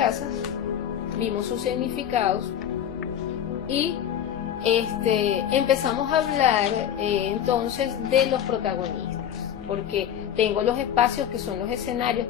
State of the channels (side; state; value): right; quieter; 9.8 dB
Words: vimos sus significados y empezamos a hablar entonces de los protagonistas, porque tengo los espacios que son los escenarios,